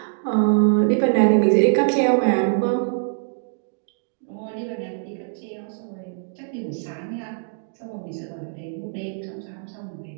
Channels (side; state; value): left; silent; digital silence